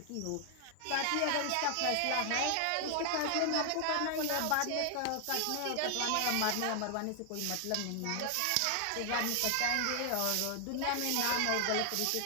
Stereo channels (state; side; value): different; both; correlation 0.00